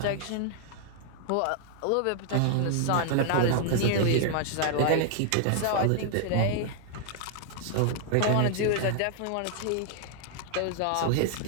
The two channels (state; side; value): different; both; correlation 0.00